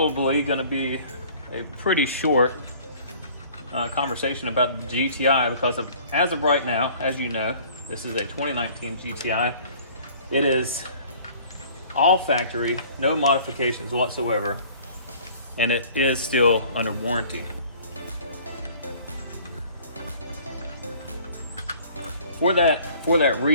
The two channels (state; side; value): inverted; both; correlation -0.51